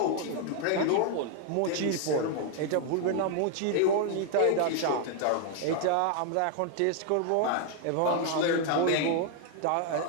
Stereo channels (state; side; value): different; both; correlation 0.00